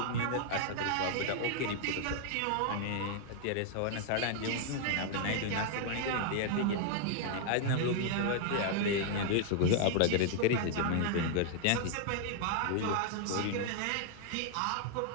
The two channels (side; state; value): both; different; correlation 0.00